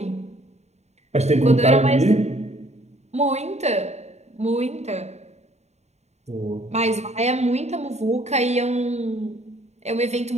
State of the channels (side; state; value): left; late; 0.32 ms